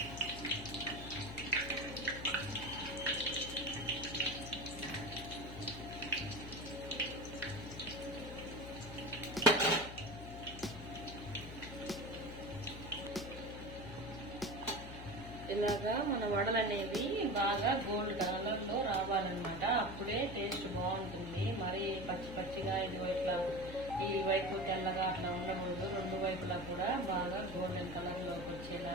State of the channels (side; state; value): left; noise; hum, 11 dB below the sound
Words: ఇలాగా మన వడలు అనేవి బాగా గోల్డ్ కలర్ లో రావాలన్నమాట. అప్పుడే టేస్ట్ బాగుంటుంది. మరి పచ్చిగా ఇది ఇట్లా ఈ వైపు తెల్లగా అట్లా ఉండకూడదు. 2 వైపులా కూడా బాగా గోల్డెన్ కలర్ లోకి